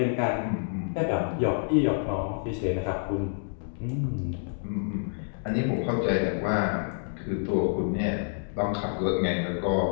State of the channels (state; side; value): silent; right; digital silence